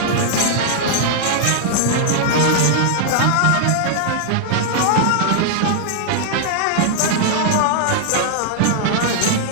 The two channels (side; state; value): both; different; correlation -0.01